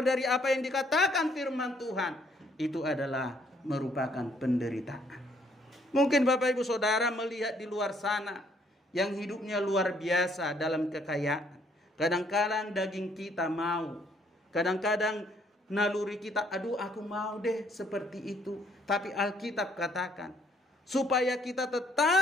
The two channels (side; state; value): both; normal; correlation 0.66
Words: dari apa yang dikatakan firman Tuhan, itu adalah merupakan penderitaan. Mungkin Bapak Ibu Saudara melihat di luar sana yang hidupnya luar biasa dalam kekayaan. Kadang-kadang daging kita mau, kadang-kadang naluri kita, aduh aku mau deh seperti itu. Tapi Alkitab katakan, supaya kita